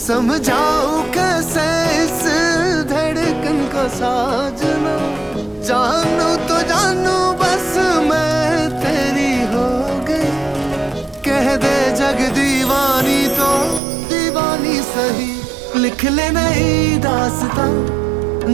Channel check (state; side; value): drops out; left; at 13.8 s